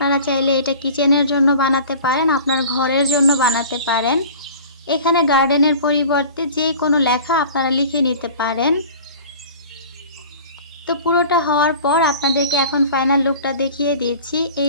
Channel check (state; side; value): inverted; both; correlation -0.42